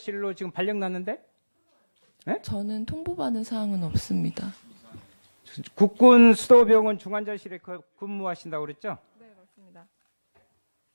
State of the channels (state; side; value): inverted; both; correlation -1.00